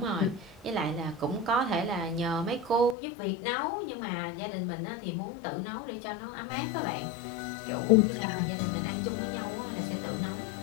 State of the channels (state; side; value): drops out; right; at 3.0 s